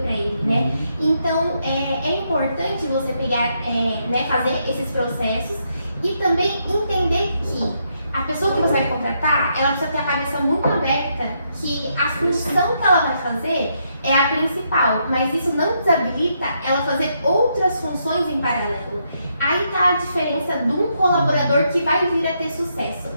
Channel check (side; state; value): both; inverted; correlation -0.78